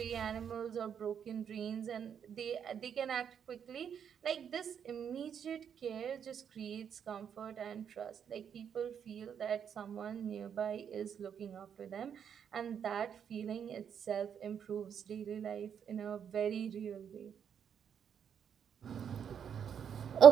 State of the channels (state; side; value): quieter; left; 8.0 dB